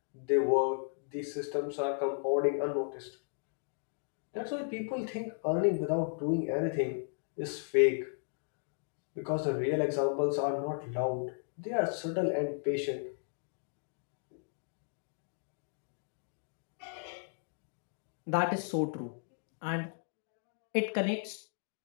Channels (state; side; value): silent; right; digital silence